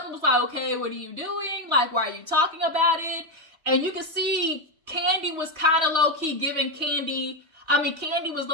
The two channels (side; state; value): left; late; 3.2 ms